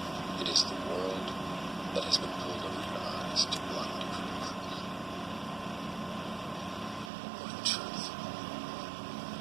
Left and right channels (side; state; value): left; drops out; at 7.1 s